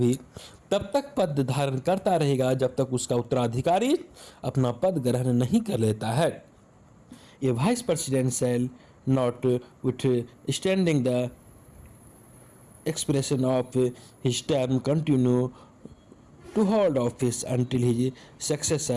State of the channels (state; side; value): identical; both; correlation 1.00